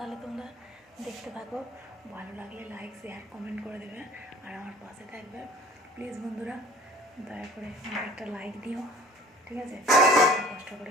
তোমরা দেখতে থাকো, ভালো লাগলে লাইক শেয়ার কমেন্ট করে দেবে, আর আমার পাশে থাকবে প্লিজ বন্ধুরা, দয়া করে আমাকে একটা লাইক দিও, ঠিক আছে? কষ্ট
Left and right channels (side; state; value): both; normal; correlation 0.47